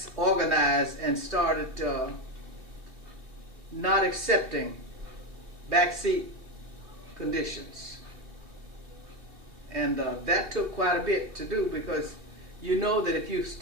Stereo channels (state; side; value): late; left; 2.6 ms